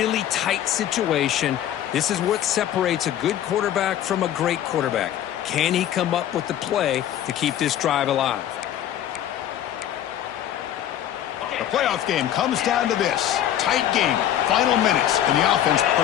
tight situation. This is what separates a good quarterback from a great quarterback. Can he come up with the play to keep this drive alive? The playoff game comes down to this. Tight game, final minutes. Can the offense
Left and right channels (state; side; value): quieter; right; 11.3 dB